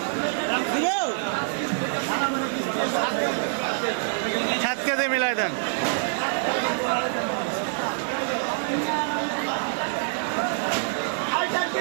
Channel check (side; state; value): left; silent; digital silence